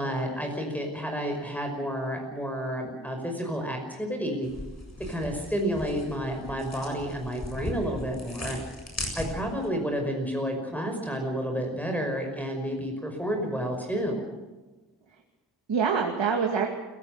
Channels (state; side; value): normal; both; correlation 0.46